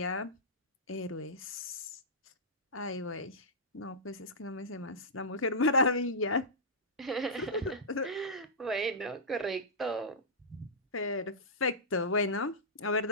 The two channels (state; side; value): normal; both; correlation -0.15